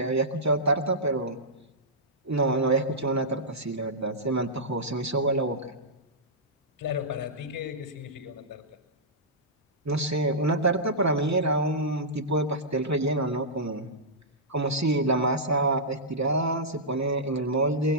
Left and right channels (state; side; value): normal; both; correlation -0.13